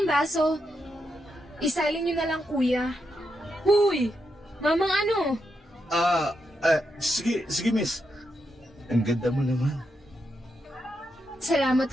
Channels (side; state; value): both; normal; correlation 0.83